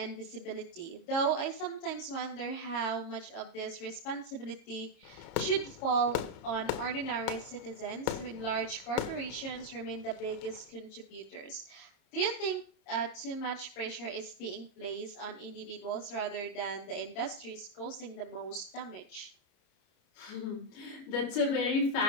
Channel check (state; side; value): late; right; 29 ms